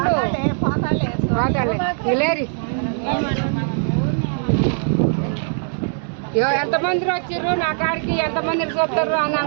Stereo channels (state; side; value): silent; left; digital silence